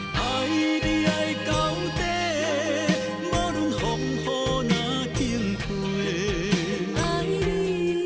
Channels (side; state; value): both; identical; correlation 1.00